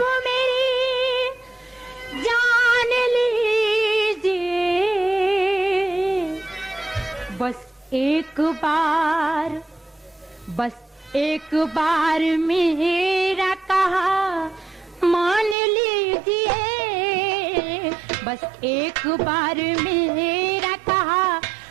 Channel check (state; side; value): drops out; left; at 15.6 s